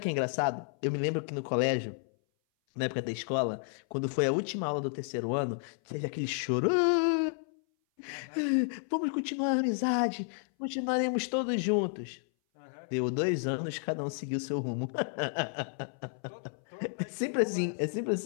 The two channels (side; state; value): right; silent; 57 dB below the other